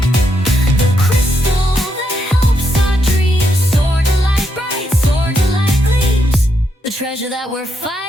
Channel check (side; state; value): both; normal; correlation 0.79